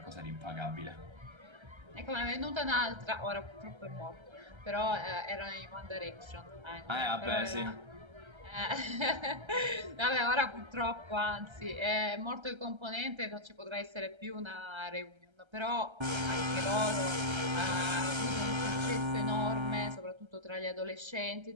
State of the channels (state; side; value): late; left; 1.3 ms